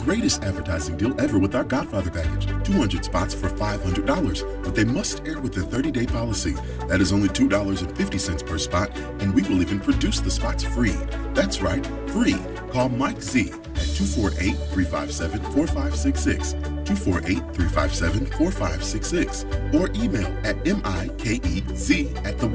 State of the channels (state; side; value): identical; both; correlation 1.00